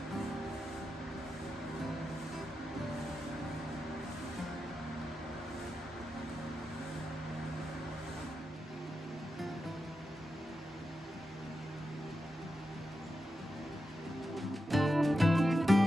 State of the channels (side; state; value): both; normal; correlation 0.89